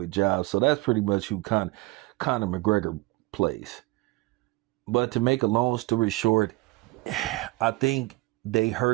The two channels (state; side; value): quieter; left; 21.9 dB